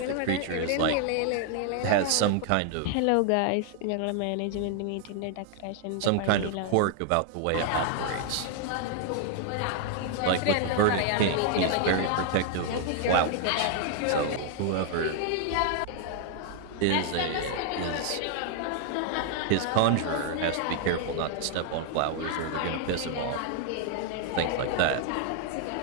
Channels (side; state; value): both; different; correlation 0.00